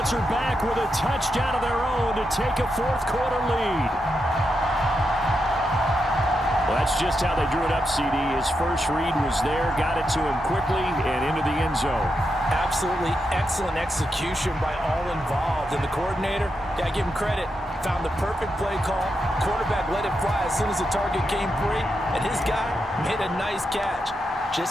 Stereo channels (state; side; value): normal; both; correlation 0.85